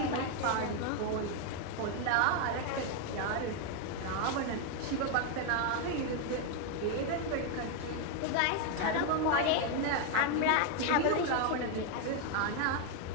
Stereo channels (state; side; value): different; both; correlation 0.01